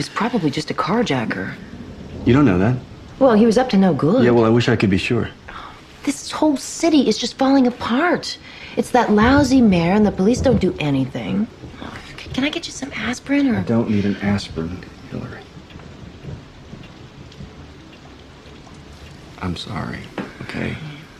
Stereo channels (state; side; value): identical; both; correlation 1.00